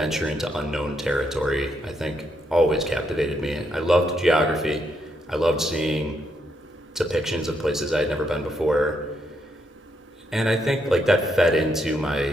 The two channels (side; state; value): both; normal; correlation 0.78